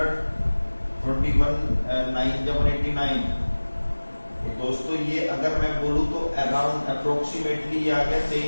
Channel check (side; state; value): both; inverted; correlation -1.00